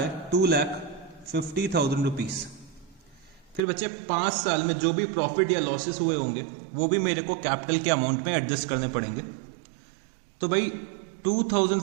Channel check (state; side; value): drops out; left; at 3.6 s